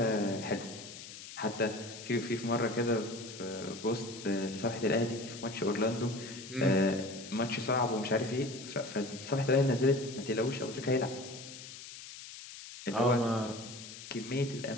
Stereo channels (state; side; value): noise; left; hiss, 13 dB below the sound